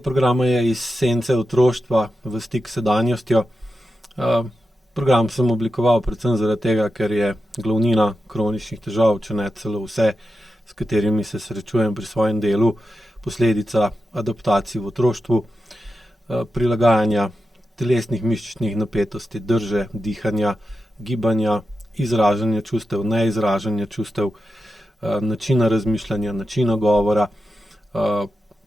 je Iz sence otroštva v stik s sedanjostjo. Program sem oblikoval predvsem zaradi tega, ker je glavnina kroničnih težav, če ne celo vse, s katerimi se srečujem pri svojem delu, posledica adaptacij v otroštvu, prilagajanja telesnih mišičnih napetosti, drže, dihanja, gibanja, izražanja čustev, neizražanja čustev, načina razmišljanja, načina govora,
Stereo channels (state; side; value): normal; both; correlation 0.90